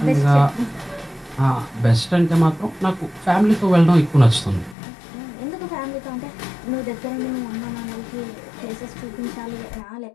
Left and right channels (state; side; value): drops out; right; at 4.8 s